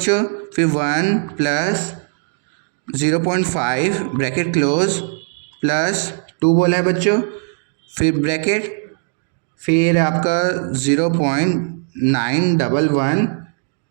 फिर 1 प्लस 0.5 ब्रैकेट क्लोज प्लस 2 बोला है बच्चों, फिर ब्रैकेट, फिर आपका 0.911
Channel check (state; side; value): silent; left; 59 dB below the other